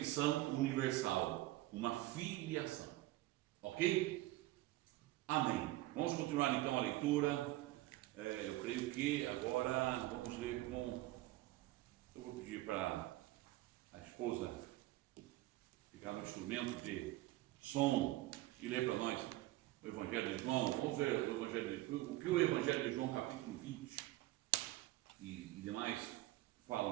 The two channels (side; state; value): left; quieter; 17.4 dB